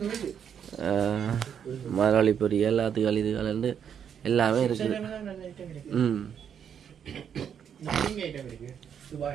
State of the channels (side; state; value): left; quieter; 8.2 dB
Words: மரவள்ளி பொரி, எல்லாத்துக்கள் இதுகள் இருந்து எல்லாமே இருக்குது. ம்